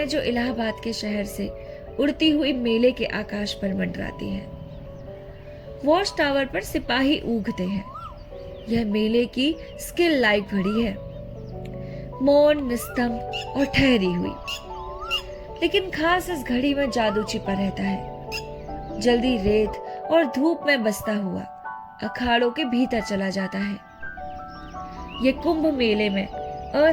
जो इलाहाबाद के शहर से उड़ती हुई मेले के आकाश पर मंडराती हैं। वॉच टावर पर सिपाही ऊगते हैं। यह मेले की स्किल लाइफ घड़ी है, मौन, निस्तंभ और ठहरी हुई। लेकिन खास इस घड़ी में जादू छिपा रहता है। जल्दी रेत और धूप में बसता हुआ अखाड़ों के भीतर चला जाता है। यह कुंभ मेले में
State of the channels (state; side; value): identical; both; correlation 1.00